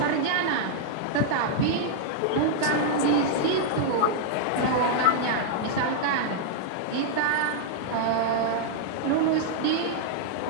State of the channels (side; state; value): both; different; correlation -0.01